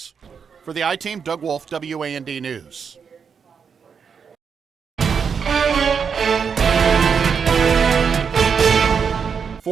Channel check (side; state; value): left; quieter; 6.4 dB